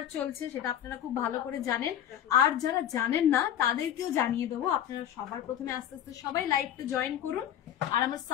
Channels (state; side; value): quieter; right; 10.6 dB